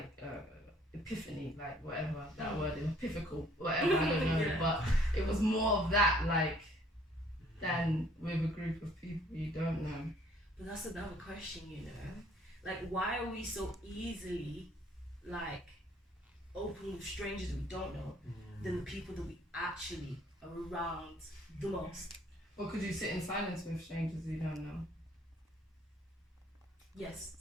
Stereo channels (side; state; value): both; normal; correlation 0.60